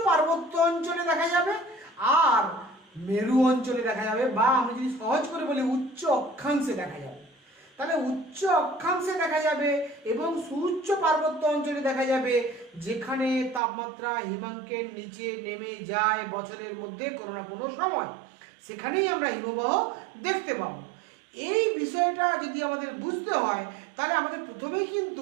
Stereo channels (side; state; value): left; drops out; at 13.6 s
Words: পার্বত্য অঞ্চলে দেখা যাবে আর মেরু অঞ্চলে দেখা যাবে, বা আমি যদি সহজ করে বলি উচ্চ অক্ষাংশে দেখা যাবে। তাহলে উচ্চ অক্ষাংশে দেখা যাবে এবং সুউচ্চ পার্বত্য অঞ্চলে দেখা যাবে যেখানে তাপমাত্রা হিমাঙ্কের নিচে নেমে যায় বছরের মধ্যে কোনো না কোনো সময়, সেখানেই আমরা হিমবাহ দেখতে পাবো। এই বিষয়টা যদি আমাদের বুঝতে হয় তাহলে আমাদের প্রথমেই